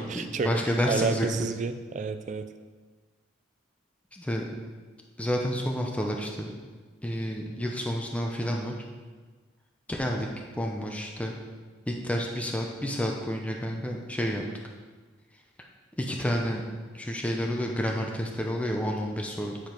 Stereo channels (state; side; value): normal; both; correlation 0.74